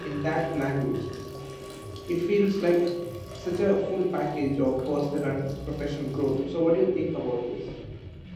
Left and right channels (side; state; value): both; identical; correlation 1.00